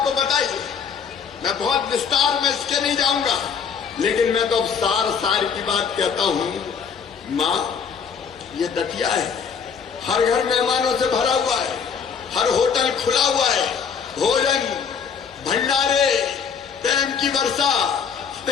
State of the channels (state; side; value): quieter; right; 6.6 dB